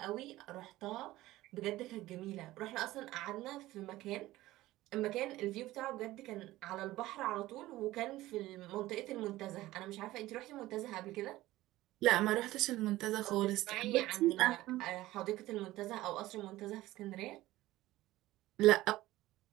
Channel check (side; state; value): left; quieter; 16.8 dB